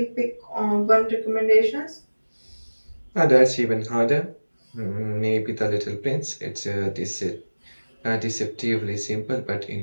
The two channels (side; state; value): both; inverted; correlation -1.00